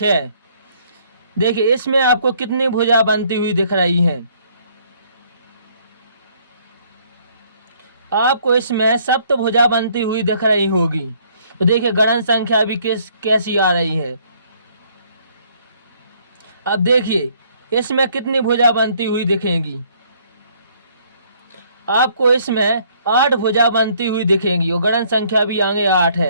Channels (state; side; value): inverted; both; correlation -0.63